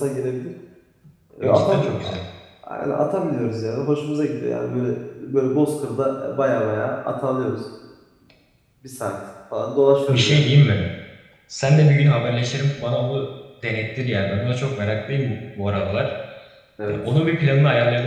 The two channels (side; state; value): both; identical; correlation 1.00